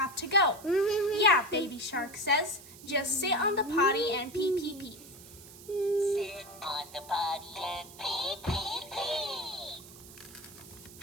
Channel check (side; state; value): right; noise; hiss, 18 dB below the sound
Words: to go. Yeah, Baby shark says. Just sit on the potty and pee, pee, pee. Sit on the potty and pee, pee, pee.